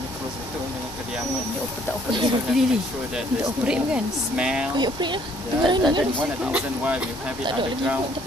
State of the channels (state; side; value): normal; both; correlation 0.62